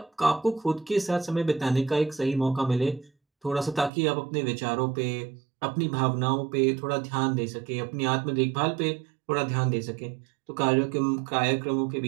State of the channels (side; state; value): left; drops out; at 3.9 s